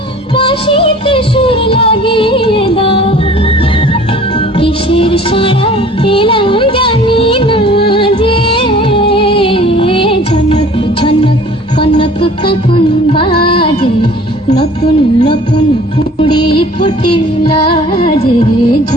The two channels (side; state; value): both; normal; correlation 0.49